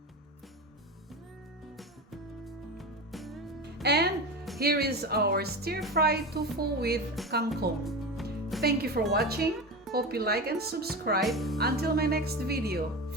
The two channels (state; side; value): normal; both; correlation 0.25